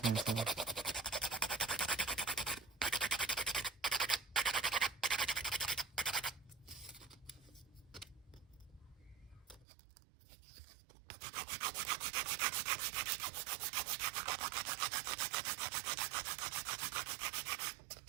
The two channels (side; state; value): left; drops out; at 9.7 s